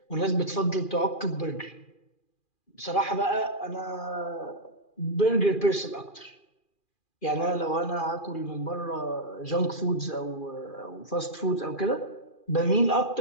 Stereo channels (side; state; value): right; late; 2.4 ms